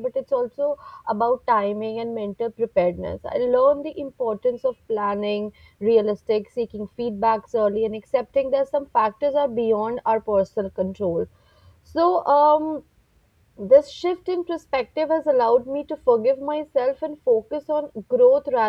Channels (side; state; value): both; identical; correlation 1.00